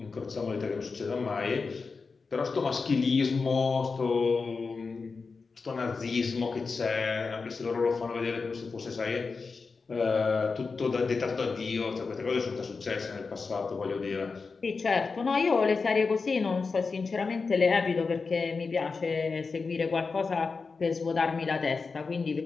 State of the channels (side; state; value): right; quieter; 4.6 dB